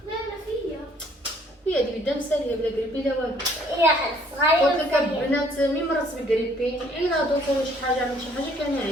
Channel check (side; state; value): both; normal; correlation 0.61